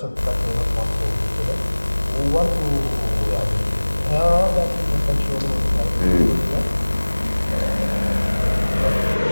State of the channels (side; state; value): both; inverted; correlation -1.00